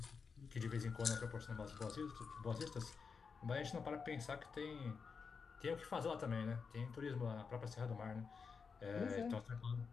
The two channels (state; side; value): quieter; right; 5.4 dB